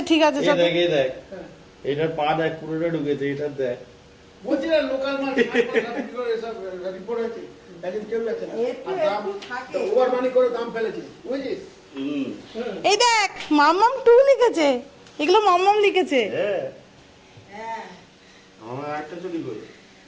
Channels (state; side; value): identical; both; correlation 1.00